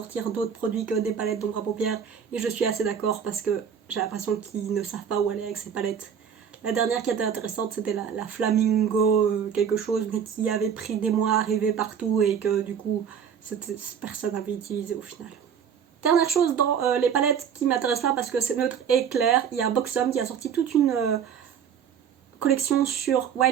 d'autres produits que des palettes d'ombre à paupières, et je suis assez d'accord parce que j'ai l'impression qu'ils ne savent pas où aller avec ces palettes. La dernière qui était intéressante, c'était la Flamingo quelque chose, mais qui avait pris des mois à arriver partout et que du coup personne n'avait utilisé au final. Dernière chose dans les palettes qui m'intéressent pas parce que c'est neutre et clair, il y a Boxom qui a sorti toute une collection sur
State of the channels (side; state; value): left; quieter; 7.7 dB